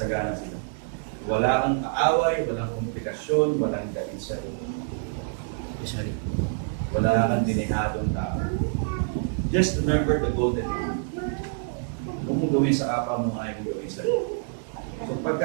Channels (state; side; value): silent; left; digital silence